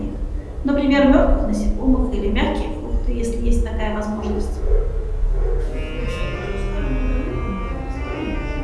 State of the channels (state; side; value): identical; both; correlation 1.00